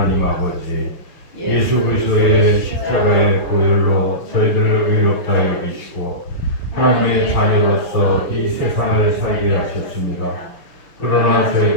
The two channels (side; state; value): right; late; 6.4 ms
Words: 아버지, 예수 그리스도의 십자가의 보혈로 저희들을 의롭다 여기시고 하나님의 자녀로서 이 세상을 살게 하셨습니다. 그러나